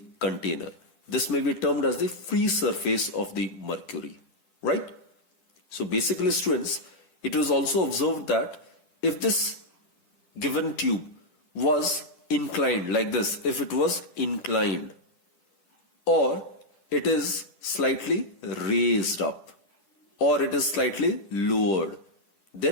container. This may be termed as the free surface of the mercury, right? So basically, students, it was also observed that if this given tube was inclined like this, if it was inclined or it is slightly raised up or it is slightly lowered,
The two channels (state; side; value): late; right; 10 ms